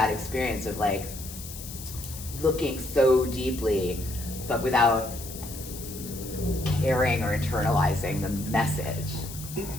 experience of like looking so deeply, but without caring or internalizing the message.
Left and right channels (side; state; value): left; noise; hiss, 12 dB below the sound